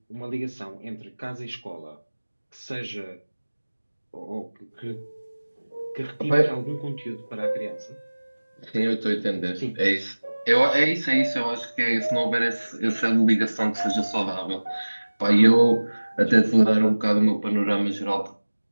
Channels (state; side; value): inverted; both; correlation -1.00